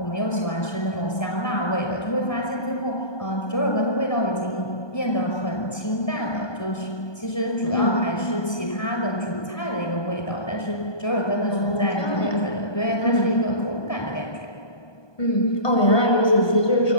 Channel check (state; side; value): late; right; 1.2 ms